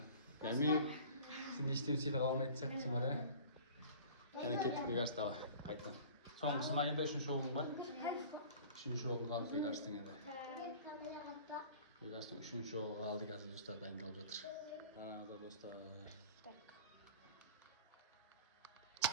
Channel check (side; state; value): both; inverted; correlation -0.43